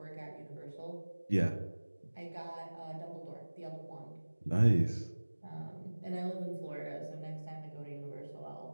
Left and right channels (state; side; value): inverted; both; correlation -1.00